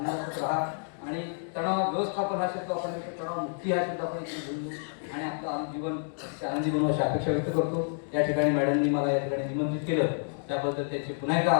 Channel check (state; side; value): silent; right; digital silence